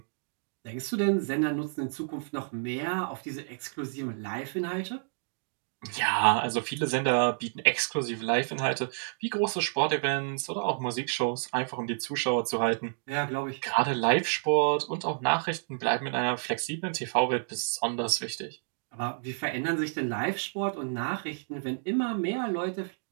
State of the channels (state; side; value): silent; left; digital silence